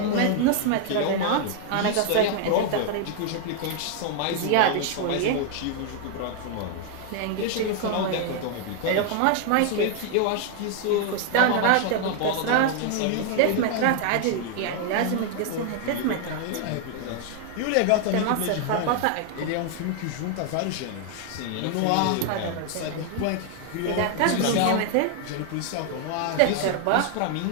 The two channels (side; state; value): both; different; correlation 0.00